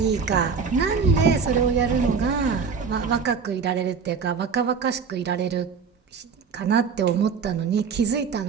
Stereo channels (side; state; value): left; quieter; 5.7 dB